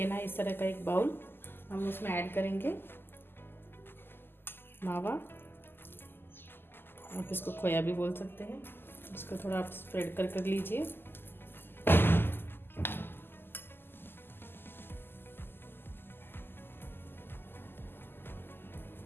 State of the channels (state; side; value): late; right; 0.10 ms